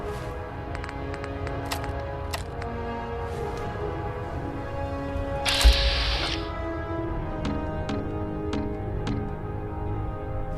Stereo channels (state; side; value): identical; both; correlation 1.00